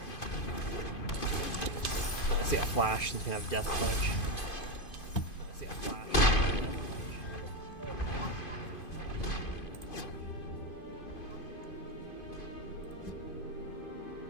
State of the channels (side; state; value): right; late; 2.5 ms